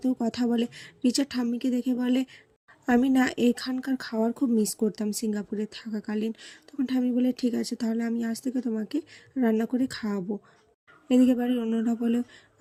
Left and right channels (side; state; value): both; identical; correlation 1.00